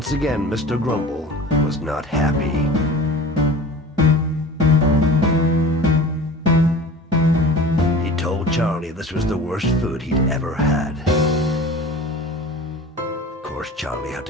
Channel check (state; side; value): normal; both; correlation 0.38